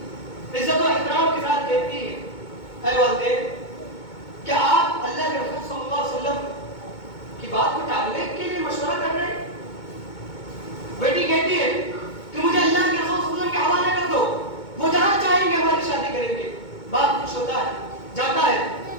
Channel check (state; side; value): late; right; 2.2 ms